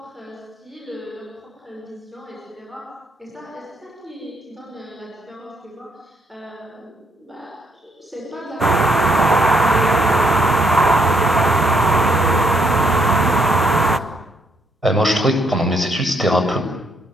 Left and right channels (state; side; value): normal; both; correlation 0.73